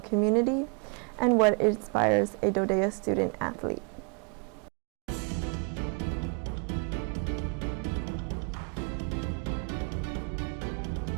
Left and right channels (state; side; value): quieter; left; 36.4 dB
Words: community, and what inspires a DoDEA student athlete.